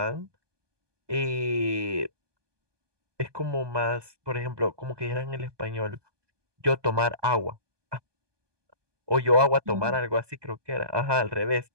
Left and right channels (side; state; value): left; late; 1.2 ms